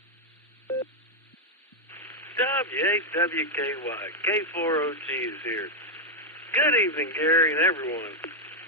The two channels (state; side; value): normal; both; correlation 0.01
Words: W8WKY. K4OG is here. Good evening, Gary, and everyone.